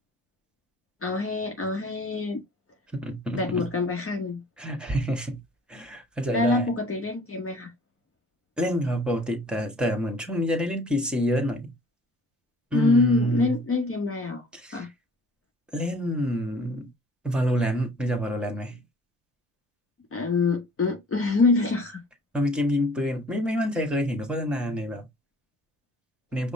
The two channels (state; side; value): normal; both; correlation 0.50